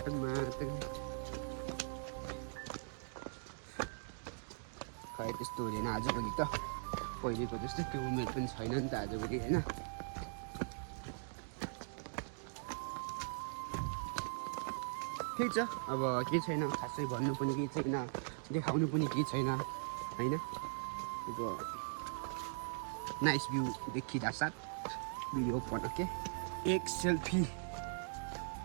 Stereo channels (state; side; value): silent; left; digital silence